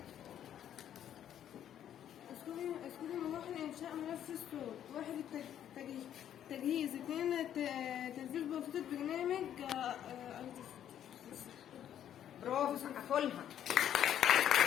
اذكري مراحل إنشاء ملف الصوت. 1. التجهيز. 2. تنفيذ بسيطة برنامج برافو، سقفوا لها.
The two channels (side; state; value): right; quieter; 10.3 dB